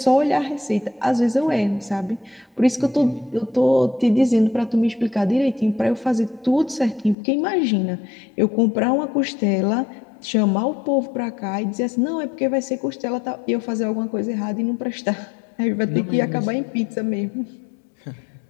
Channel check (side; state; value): right; drops out; at 7.2 s